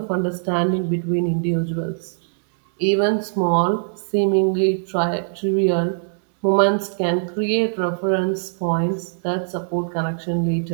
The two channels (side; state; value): left; silent; digital silence